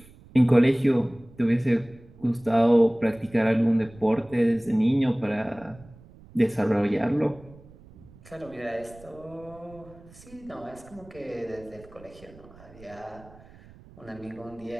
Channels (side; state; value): right; noise; rumble, 23 dB below the sound